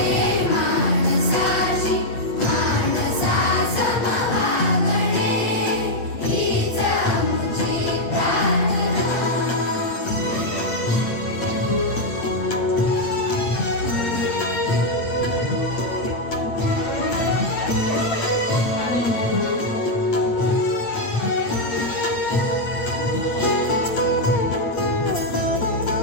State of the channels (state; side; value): late; right; 8.8 ms